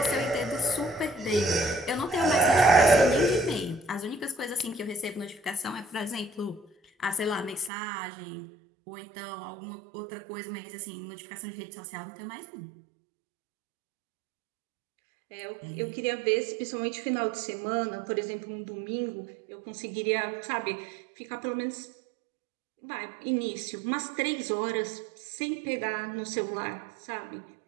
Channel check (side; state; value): left; drops out; at 7.7 s